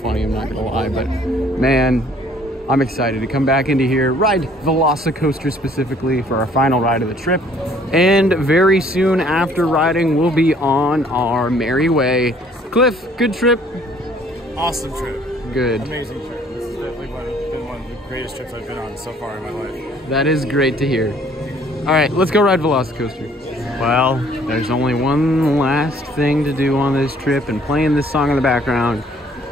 I'm not gonna lie, but man, I'm excited to come back into here, ride VelociCoaster specifically for our final ride of the trip, and very soon after riding, we'll be on our merry way. Cliff, good trip? Awesome trip. Good. Amazing trip. This is definitely been one of the greatest trips I've been on so far in my life. That is great to hear. All right, let's go ride VelociCoaster. Well, there's only one last thing to do on this trip, and playing this song in the background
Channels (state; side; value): normal; both; correlation 0.59